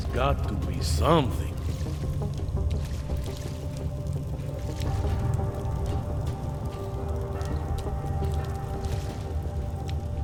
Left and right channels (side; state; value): both; identical; correlation 1.00